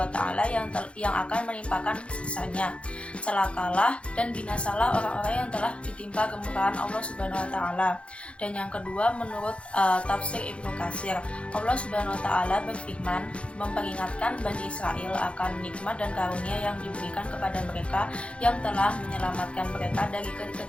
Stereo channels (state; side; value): late; right; 0.060 ms